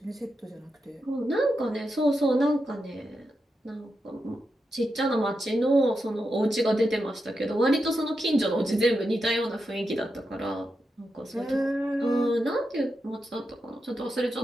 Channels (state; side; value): normal; both; correlation 0.87